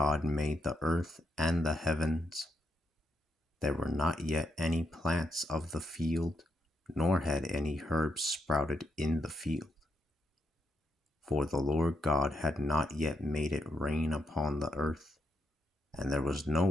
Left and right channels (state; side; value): normal; both; correlation 0.80